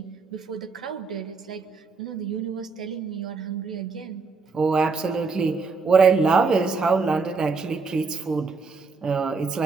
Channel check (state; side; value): quieter; left; 4.5 dB